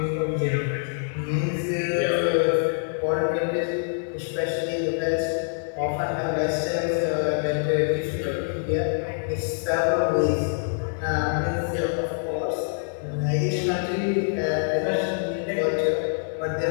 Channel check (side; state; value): right; silent; digital silence